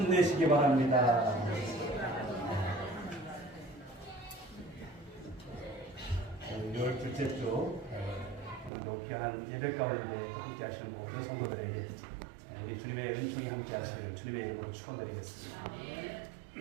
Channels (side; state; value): left; drops out; at 8.7 s